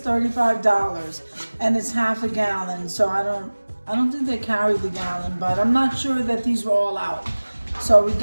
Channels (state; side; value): inverted; both; correlation -1.00